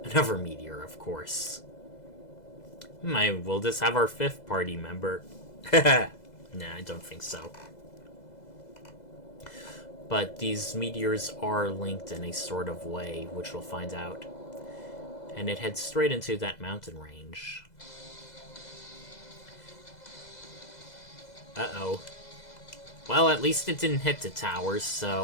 of course. Will this have our 5th party member? Nah, I don't think so. But these meteors are linked in a sort of way, which we'll find out. And it heads straight into that mountain range. Uh-oh. Well, at least it didn't hit the towers,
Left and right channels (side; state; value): right; late; 2.0 ms